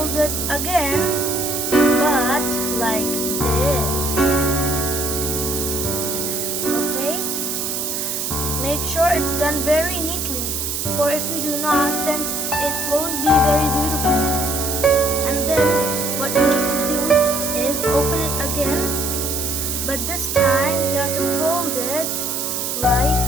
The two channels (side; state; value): right; noise; hiss, 2 dB below the sound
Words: it again, but like this. Okay? Make sure it's done very neatly. For if you do not, then it won't be very beautiful. And then what you need to do is open it again, but this time you have to fold it like